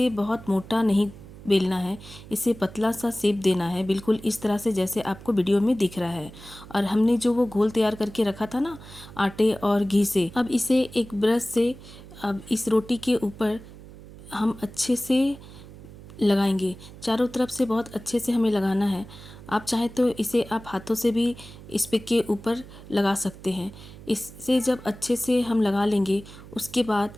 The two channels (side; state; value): right; noise; hum, 17 dB below the sound